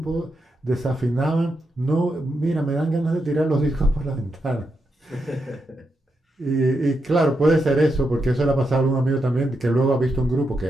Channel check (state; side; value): normal; both; correlation 0.84